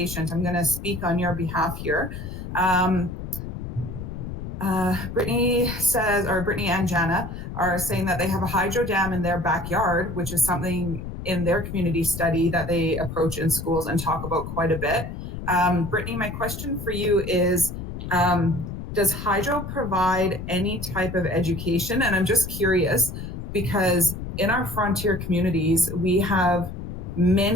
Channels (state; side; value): noise; left; rumble, 8 dB below the sound